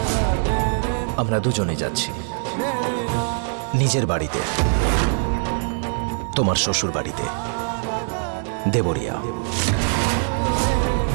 আমরা দুজনে যাচ্ছি। নিজের বাড়িতে, তোমার শ্বশুর বাড়িতে, দেবরিয়া।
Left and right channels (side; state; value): left; silent; 59 dB below the other